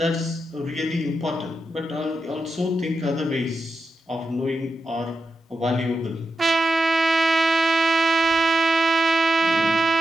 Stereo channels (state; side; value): normal; both; correlation 0.86